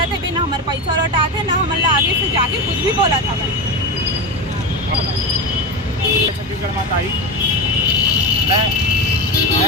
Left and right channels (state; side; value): normal; both; correlation 0.20